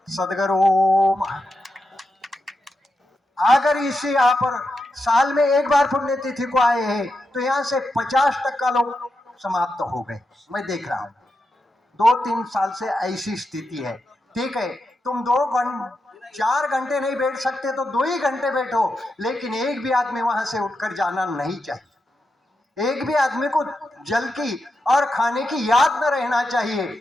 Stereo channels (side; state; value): both; normal; correlation 0.87